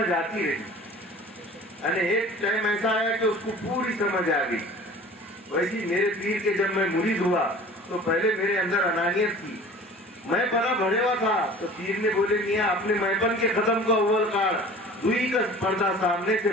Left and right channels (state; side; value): normal; both; correlation 0.43